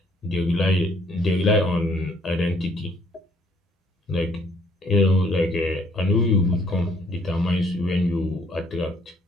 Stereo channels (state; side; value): normal; both; correlation 0.64